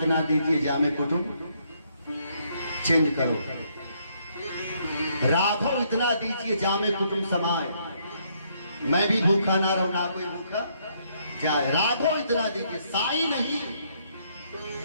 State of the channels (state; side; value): inverted; both; correlation -0.71